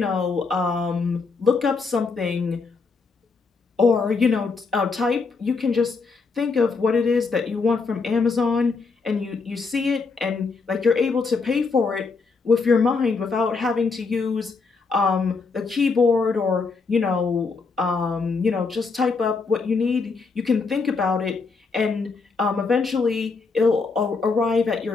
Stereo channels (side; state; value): right; quieter; 4.5 dB